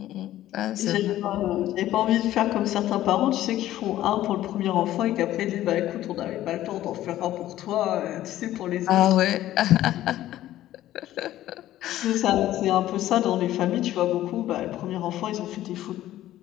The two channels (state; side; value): quieter; right; 13.9 dB